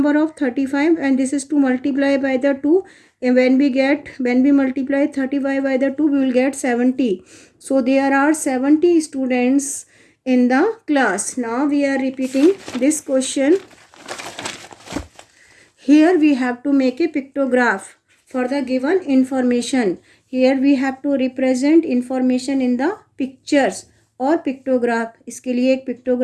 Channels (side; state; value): both; identical; correlation 1.00